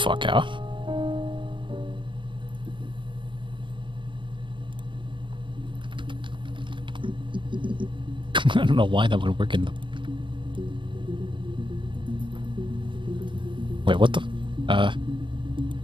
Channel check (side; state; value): left; late; 0.24 ms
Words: out. I don't know why that would work in the... Wait, what the...